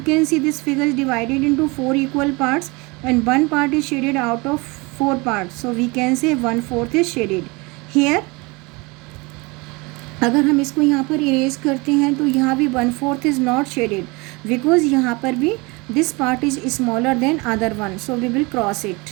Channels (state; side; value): quieter; left; 26.1 dB